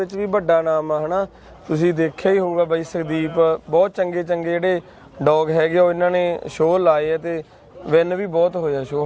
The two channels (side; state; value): both; identical; correlation 1.00